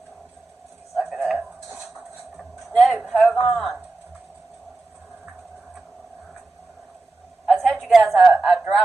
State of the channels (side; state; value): left; quieter; 3.2 dB